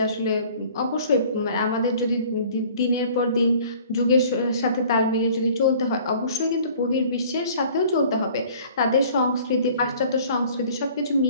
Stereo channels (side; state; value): both; inverted; correlation -0.51